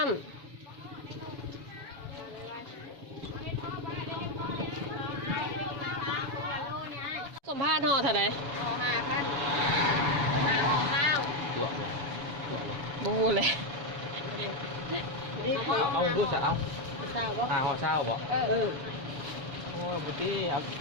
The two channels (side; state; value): left; late; 7.0 ms